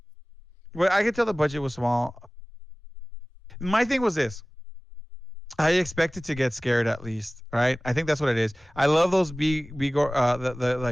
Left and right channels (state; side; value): normal; both; correlation 0.98